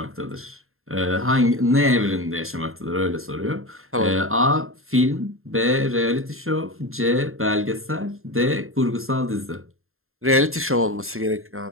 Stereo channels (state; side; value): late; left; 0.61 ms